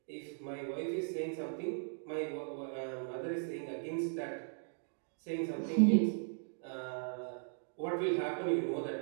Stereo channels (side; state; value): left; silent; digital silence